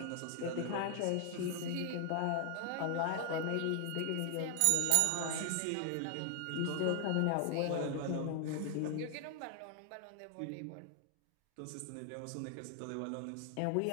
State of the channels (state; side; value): different; both; correlation 0.00